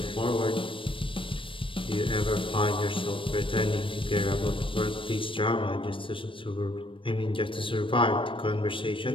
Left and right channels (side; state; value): right; late; 0.25 ms